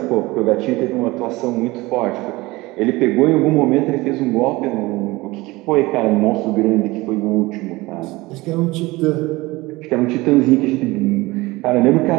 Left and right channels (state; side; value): quieter; left; 21.1 dB